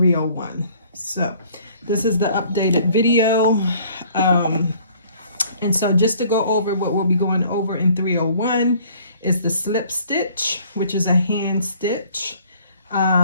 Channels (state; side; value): inverted; both; correlation -0.56